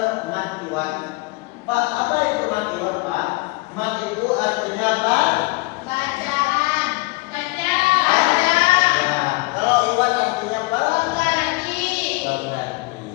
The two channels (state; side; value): quieter; right; 24.4 dB